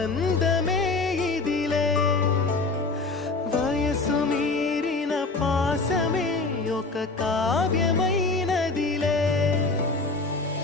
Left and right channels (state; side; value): quieter; right; 3.6 dB